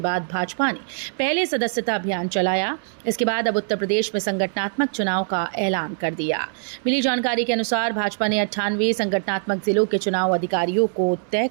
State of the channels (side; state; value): left; silent; 64 dB below the other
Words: बाद भाजपा ने पहले सदस्यता अभियान चलाया। इसके बाद अब उत्तर प्रदेश में संगठनात्मक चुनाव का ऐलान कर दिया। मिली जानकारी के अनुसार भाजपा ने 98 संगठनात्मक जिलों के चुनाव अधिकारियों को तय